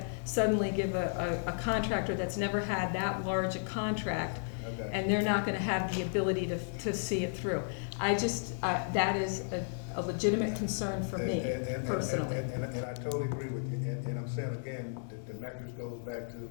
suddenly give a contractor that's never had that large a contract, and they're not gonna have the ability to see it through. That is a legitimate concern for me, personally. And I totally agree with you, and I'm saying again, the metrics goes back to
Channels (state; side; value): silent; right; 55 dB below the other